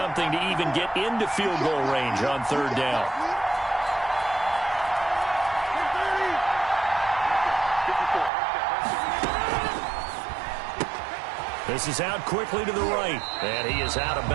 to even get into field goal range on 3rd down. This is out quickly to the right, and he is out of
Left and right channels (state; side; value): drops out; left; at 8.3 s